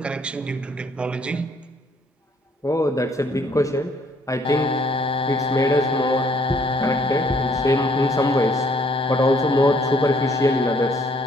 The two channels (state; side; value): normal; both; correlation 0.65